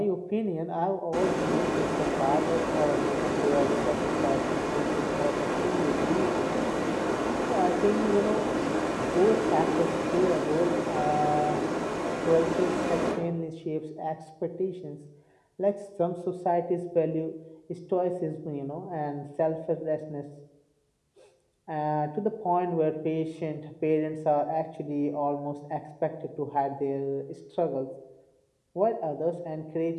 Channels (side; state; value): both; identical; correlation 1.00